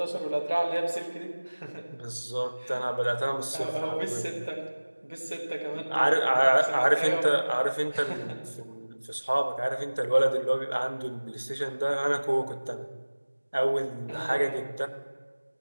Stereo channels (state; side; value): inverted; both; correlation -1.00